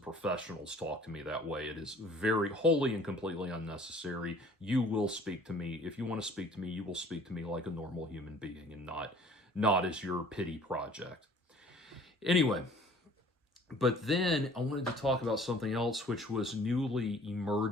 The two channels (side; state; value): both; normal; correlation 0.52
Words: professionals talk to me that way. It is very wholly and completely unnecessary. You will speak to me. If you want to speak to me, you will speak to me like a normal human being, and not as your pity project. Anyway, but then I wanted to talk about something else which was newly